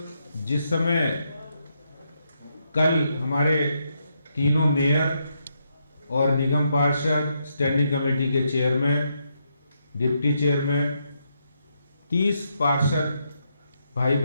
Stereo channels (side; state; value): both; inverted; correlation -0.80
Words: जिस समय कल हमारे तीनों मेयर और निगम पार्षद, स्टैंडिंग कमेटी के चेयरमैन, डिप्टी चेयरमैन, 30 पार्षद भाई